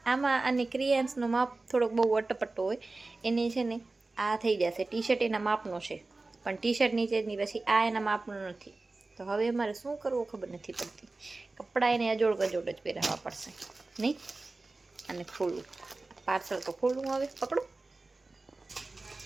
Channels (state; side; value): quieter; left; 3.4 dB